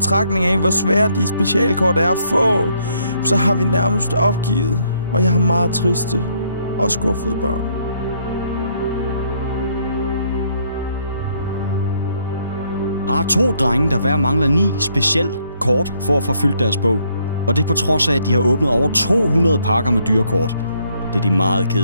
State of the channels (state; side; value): inverted; both; correlation -0.70